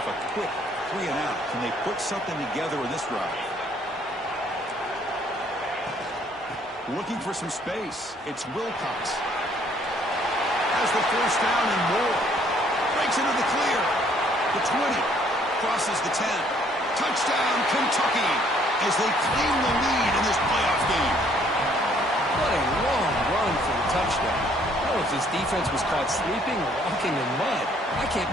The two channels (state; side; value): normal; both; correlation 0.63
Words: a quick 3-and-out. Can they put something together in this drive? Looking for some space. It's Wilcox. Has the first down and more. Breaks into the clear. The 20. Crosses the 10. Touchdown, Kentucky, as they claim the lead in this playoff game. What a long run for the touchdown. I don't know if this defense was caught sleeping or walking in mud. I can't